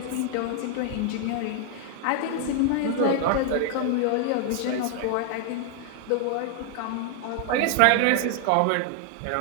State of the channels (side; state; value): both; different; correlation 0.00